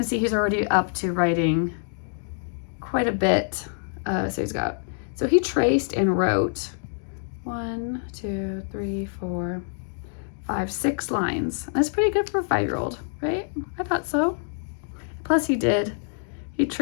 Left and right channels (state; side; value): silent; right; digital silence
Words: see he's already up to writing quite a bit. So he traced and wrote 1, 2, 3, 4, 5, 6 lines. That's pretty good for a 5-year-old, right? I thought so. Plus he